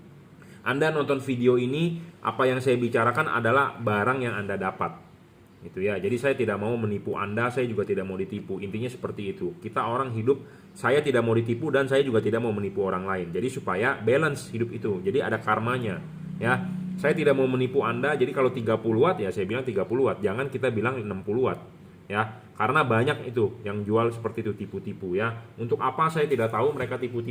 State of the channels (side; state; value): both; identical; correlation 1.00